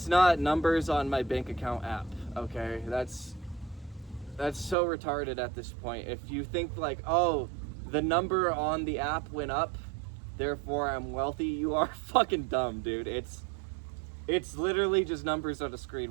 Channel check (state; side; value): drops out; left; at 4.8 s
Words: numbers on my bank account app, okay? That's so retarded at this point. If you think like, oh, the number on the app went up, therefore I'm wealthy, you are fucking dumb, dude. It's literally just numbers on a screen.